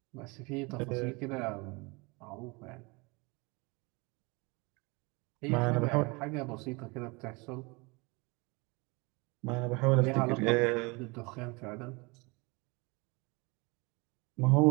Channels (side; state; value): left; quieter; 27.3 dB